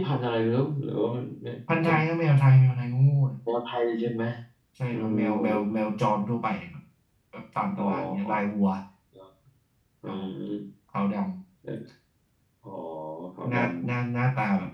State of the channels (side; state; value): both; identical; correlation 1.00